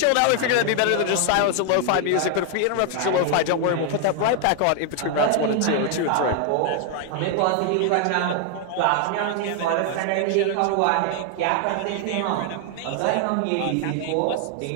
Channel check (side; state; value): both; different; correlation 0.00